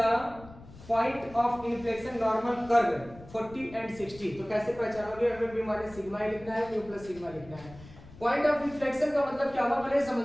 point of inflection normal curve 40 and 60 तो कैसे पहचानोगे? हमें म्यू माइनस सिग्मा ही लिखना है म्यू प्लस सिग्मा लिखना है। पॉइंट ऑफ इन्फ्लेक्शन का मतलब क्या हुआ पहले समझ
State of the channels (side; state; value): left; noise; rumble, 19 dB below the sound